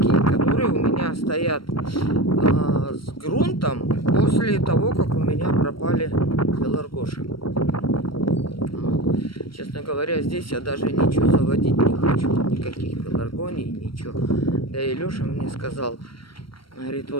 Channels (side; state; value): right; late; 0.74 ms